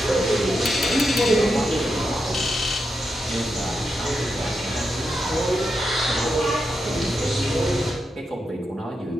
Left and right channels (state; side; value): normal; both; correlation 0.85